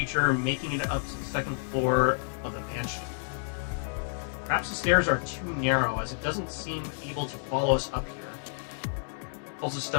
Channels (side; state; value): right; silent; digital silence